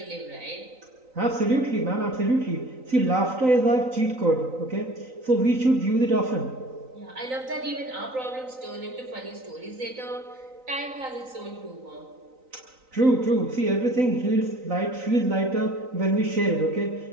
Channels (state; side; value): late; left; 3.9 ms